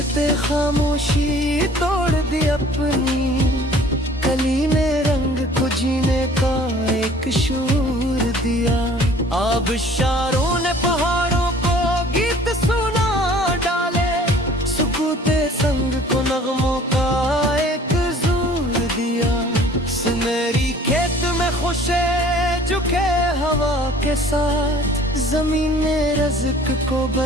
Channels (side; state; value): both; normal; correlation 0.51